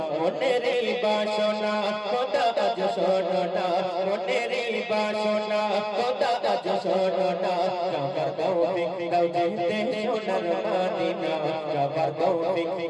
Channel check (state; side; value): identical; both; correlation 1.00